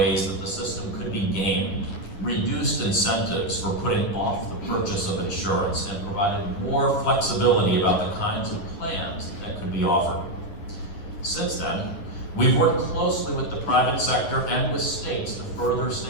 that the system could be gamed, reduced incentives for putting off the purchase of insurance, and provided more flexibility about the kinds of plans that could be offered. Since then, we've worked closely with the private sector and with states to further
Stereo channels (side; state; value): right; late; 10 ms